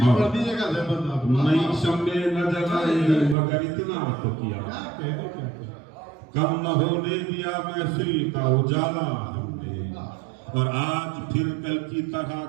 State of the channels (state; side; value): drops out; left; at 3.4 s